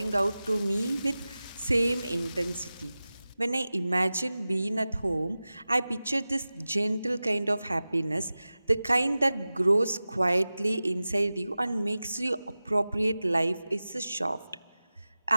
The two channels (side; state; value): both; inverted; correlation -0.96